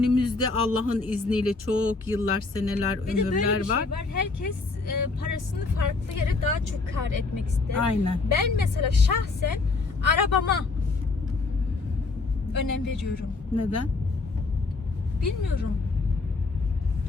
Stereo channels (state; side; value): quieter; right; 3.8 dB